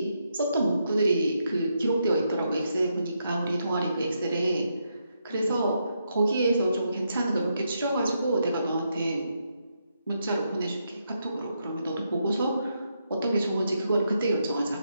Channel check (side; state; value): both; inverted; correlation -0.81